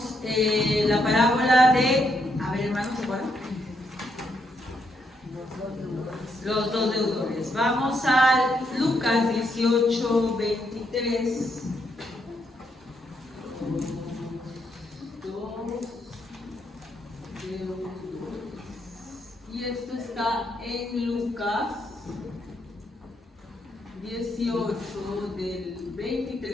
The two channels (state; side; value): normal; both; correlation 0.77